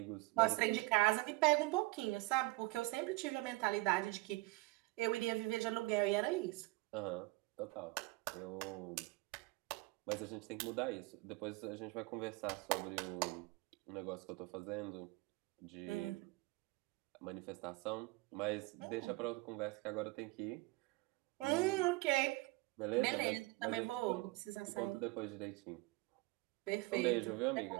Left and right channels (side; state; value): left; quieter; 22.0 dB